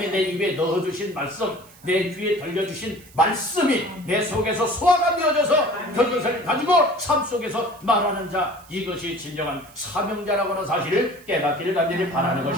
내 입에 넣어주신 말씀, 내 귀에 들려주신 말씀이 내 속에서 소화가 되어져서 그것을 가지고 삶 속에서 말하는 자, 이것이 진정한 사명자라고 하는 사실을 깨닫기를 간절히 바라는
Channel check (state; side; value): noise; right; hiss, 25 dB below the sound